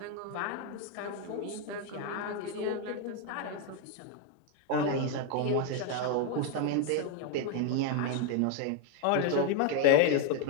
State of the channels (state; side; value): different; both; correlation 0.01